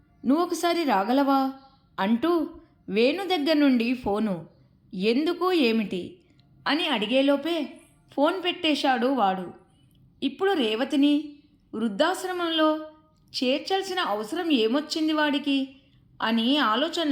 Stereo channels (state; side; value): identical; both; correlation 1.00